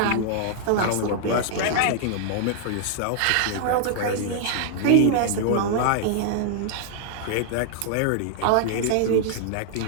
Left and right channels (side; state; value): both; different; correlation -0.01